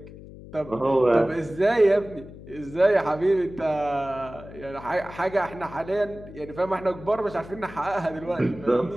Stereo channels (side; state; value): left; noise; hum, 16 dB below the sound